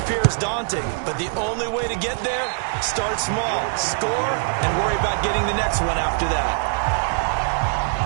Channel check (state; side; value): silent; left; digital silence